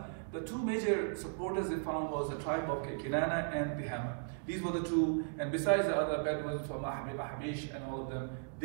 the two major supporters they found was the tribe of Kinana and Tihama. These were the two, and besides the other Bedouins from Ahbish and all of them,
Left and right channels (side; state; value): left; silent; digital silence